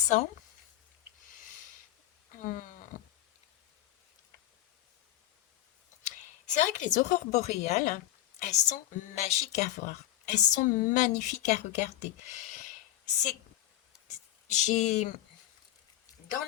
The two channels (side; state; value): right; quieter; 13.7 dB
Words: Hum. C'est vrai que les aurores boréales, elles sont magiques à voir. Elles sont magnifiques à regarder. C'est, j'ai, dans